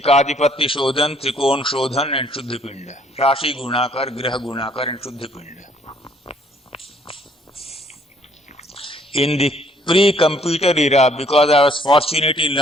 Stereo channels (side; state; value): both; normal; correlation 0.63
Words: Shodhan, Trikon Shodhan and Shuddhipinda. Rashi Gunakar, Graha Gunakar and Shuddhipinda. In the pre-computer era, because I was fortunate in